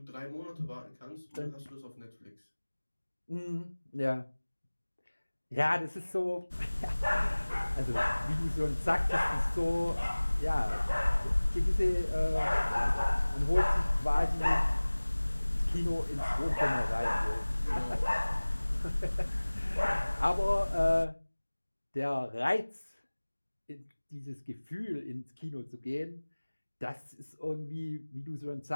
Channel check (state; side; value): inverted; both; correlation -1.00